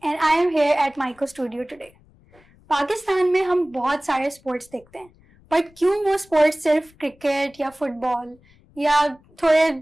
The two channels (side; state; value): left; noise; rumble, 30 dB below the sound